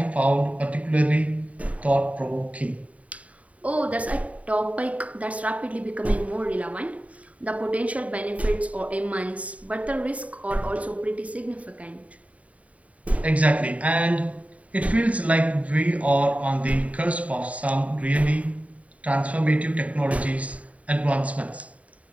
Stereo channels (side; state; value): left; late; 0.068 ms